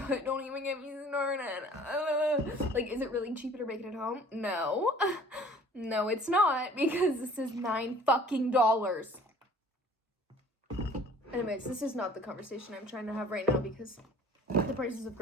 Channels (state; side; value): normal; both; correlation 0.51